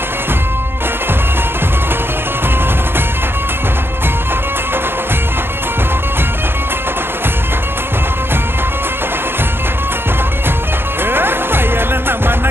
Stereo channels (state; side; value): late; left; 0.11 ms